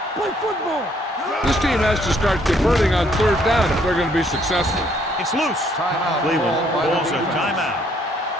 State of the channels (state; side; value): normal; both; correlation 0.66